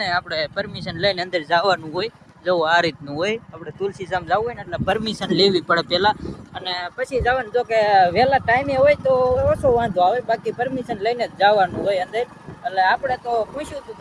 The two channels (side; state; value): both; identical; correlation 1.00